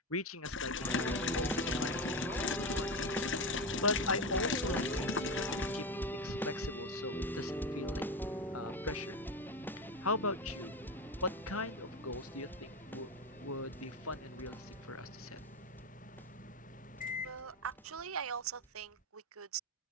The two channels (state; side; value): normal; both; correlation 0.19